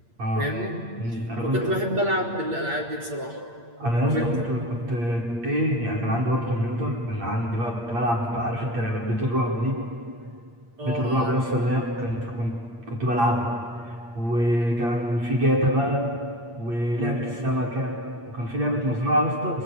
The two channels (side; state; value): left; late; 8.6 ms